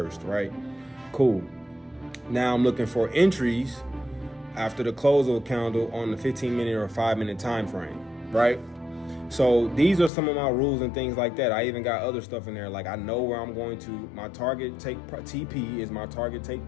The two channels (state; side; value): drops out; right; at 10.1 s